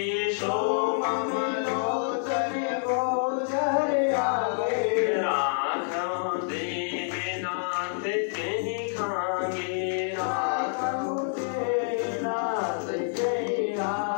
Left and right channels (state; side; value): silent; right; digital silence